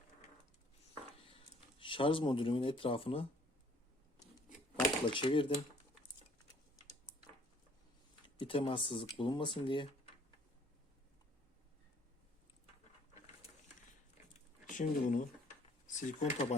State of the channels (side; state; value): both; normal; correlation 0.59